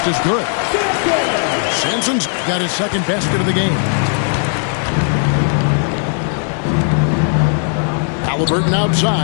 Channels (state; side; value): silent; right; 58 dB below the other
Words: is good. Sampson's got his second basket of the game. Halliburton